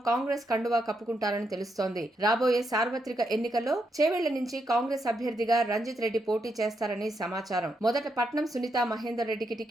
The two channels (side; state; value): both; normal; correlation 0.81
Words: కాంగ్రెస్ కండువా కప్పుకుంటారని తెలుస్తోంది. రాబోయే సార్వత్రిక ఎన్నికల్లో చేవెళ్ల నుంచి కాంగ్రెస్ అభ్యర్థిగా రంజిత్ రెడ్డి పోటీ చేస్తారని సమాచారం. మొదట పట్నం సునీతా మహేందర్ రెడ్డికి